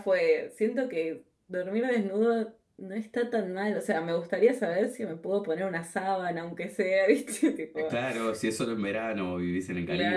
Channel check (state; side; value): identical; both; correlation 1.00